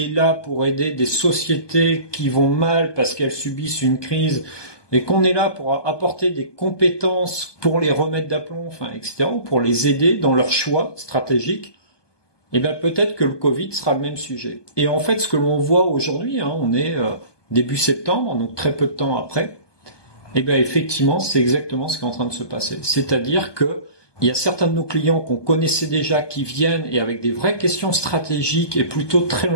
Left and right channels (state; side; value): late; right; 1.2 ms